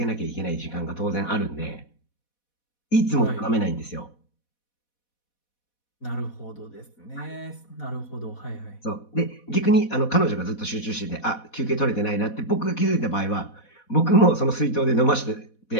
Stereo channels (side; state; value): right; late; 4.1 ms